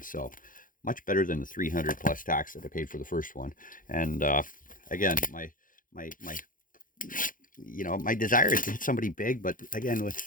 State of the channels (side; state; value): right; late; 0.39 ms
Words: So much better than the 300 plus tax that I paid for the first one. And again, my my desire is to hit somebody big, but again,